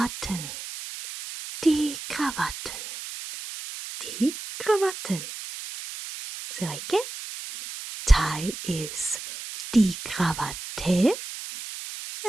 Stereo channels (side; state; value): right; noise; hiss, 10 dB below the sound